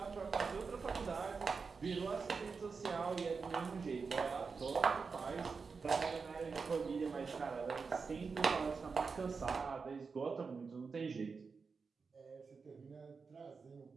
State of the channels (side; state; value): left; quieter; 5.0 dB